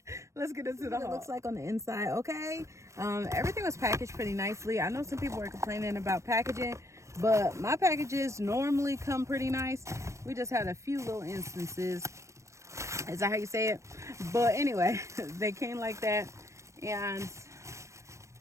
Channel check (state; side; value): late; left; 0.14 ms